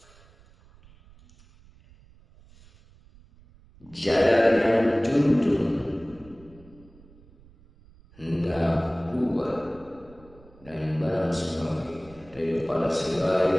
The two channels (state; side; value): noise; right; rumble, 26 dB below the sound